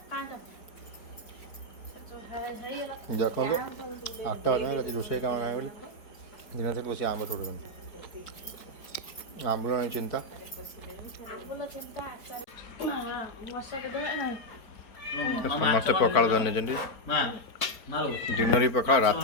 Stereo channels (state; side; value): late; right; 4.6 ms